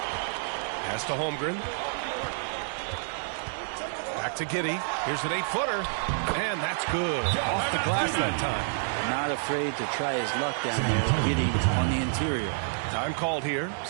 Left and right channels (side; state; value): left; silent; digital silence